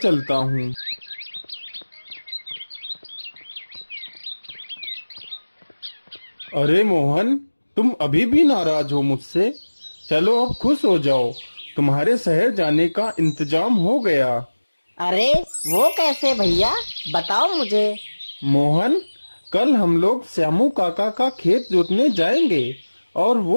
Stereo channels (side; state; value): both; inverted; correlation -1.00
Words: हूँ। अरे मोहन, तुम अभी भी नाराज हो मुझसे? चलो अब खुश हो जाओ, तुम्हारे शहर जाने का इंतजाम हो गया। अरे वो कैसे भैया, बताओ मुझे। मोहन, कल हम लोग श्यामू काका का खेत जोतने जाएंगे और